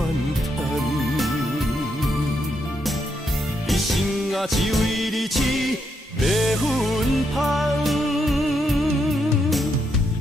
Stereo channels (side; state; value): both; normal; correlation 0.79